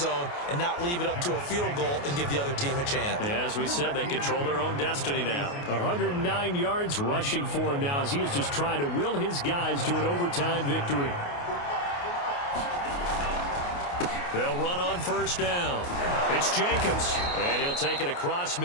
and not leave it up to a field goal and give the other team a chance. Yeah, as we said, they control their own destiny now. 109 yards rushing for him now as he is just trying to will his guys to an overtime victory. They'll run on first down. It's Jacobs, and he'll take it across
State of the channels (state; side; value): late; right; 28 ms